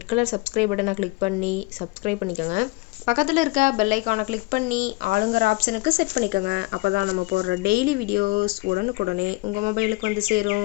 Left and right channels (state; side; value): quieter; right; 24.0 dB